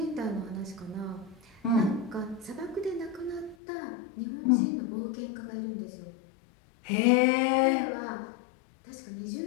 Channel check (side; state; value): right; drops out; at 3.6 s